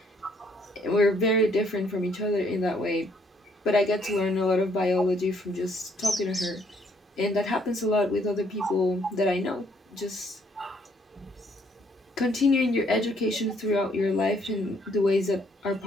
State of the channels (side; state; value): both; normal; correlation 0.67